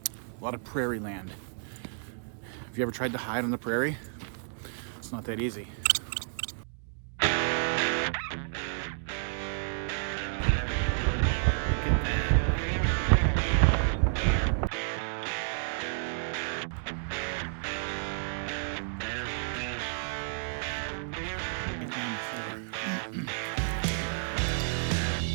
a lot of prairie land. Have you ever tried to hide on the prairie? It's not that easy.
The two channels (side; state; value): left; silent; digital silence